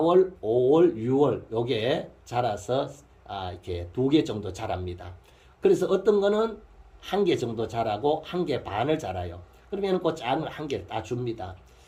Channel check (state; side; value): identical; both; correlation 1.00